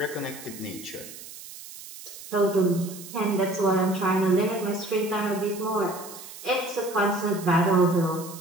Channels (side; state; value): right; noise; hiss, 14 dB below the sound